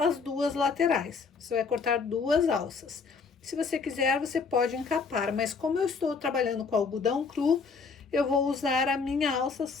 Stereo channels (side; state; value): right; quieter; 5.0 dB